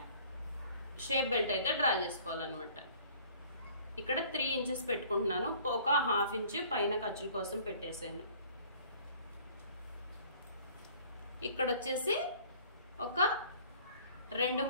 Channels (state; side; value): inverted; both; correlation -0.53